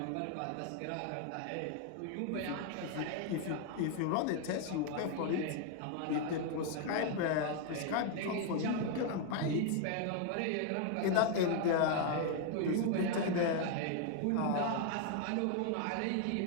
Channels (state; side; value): different; both; correlation 0.00